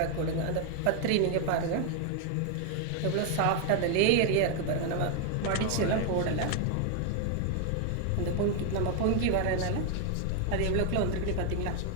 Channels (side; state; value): both; different; correlation 0.00